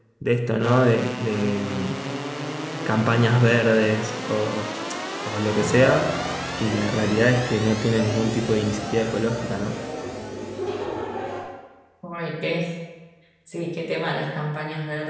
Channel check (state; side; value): identical; both; correlation 1.00